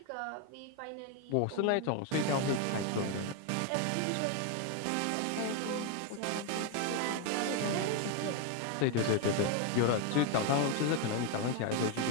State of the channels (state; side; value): different; both; correlation 0.01